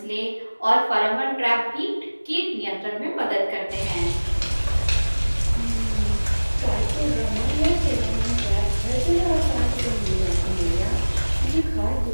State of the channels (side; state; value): both; inverted; correlation -1.00